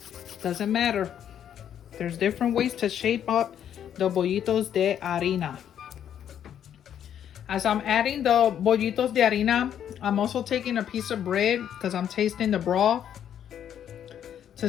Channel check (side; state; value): right; quieter; 9.6 dB